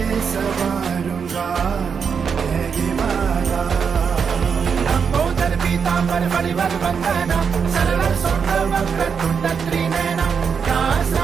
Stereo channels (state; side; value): quieter; left; 6.4 dB